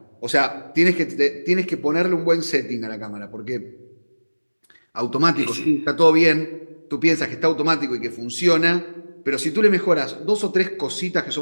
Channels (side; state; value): both; inverted; correlation -1.00